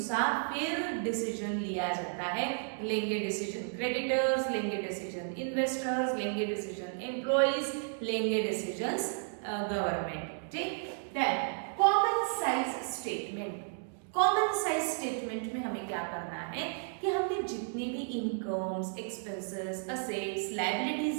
फिर डिसीजन लिया जाता है। लेंगे डिसीजन क्रेडिटर्स, लेंगे डिसीजन इन्वेस्टर्स, लेंगे डिसीजन एम्प्लॉइज, लेंगे डिसीजंस गवर्नमेंट। ठीक, then common size statement. Common size statement में हमें क्या करना है कि हमने जितनी भी incomes, expenses, assets,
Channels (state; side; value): silent; left; digital silence